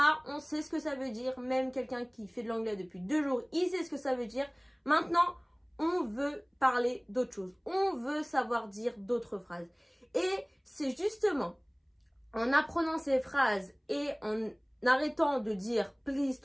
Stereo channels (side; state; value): both; identical; correlation 1.00